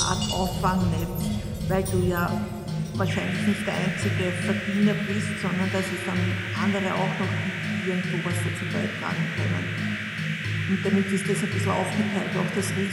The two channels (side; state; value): both; identical; correlation 1.00